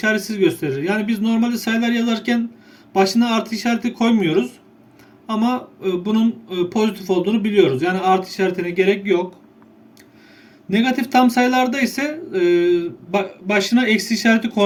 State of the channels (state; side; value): identical; both; correlation 1.00